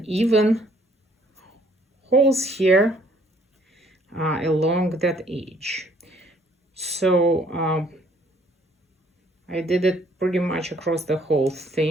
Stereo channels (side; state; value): both; normal; correlation 0.62